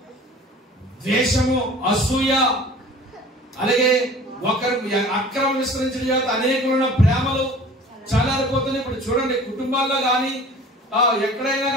ద్వేషము, అసూయ, అలాగే ఒకరు అక్రమ విస్తరించిన చేత అనేకులున్న ప్రేమలు చల్లారిపోతున్నాయి. ఇప్పుడు చూడండి, కుటుంబాల్లో కానీ ఎక్కడైనా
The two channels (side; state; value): both; normal; correlation 0.45